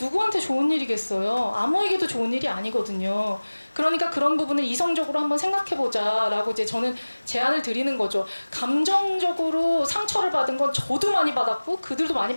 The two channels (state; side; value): inverted; both; correlation -1.00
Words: 좋은 일이겠어요? 아무에게도 좋은 일이 아니거든요. 그러니까 그런 부분을 이성적으로 한번 생각해보자라고 이제 저는 제안을 드리는 거죠. 감정적으로 상처를 받은 건 저도 많이 받았고 그들도 많이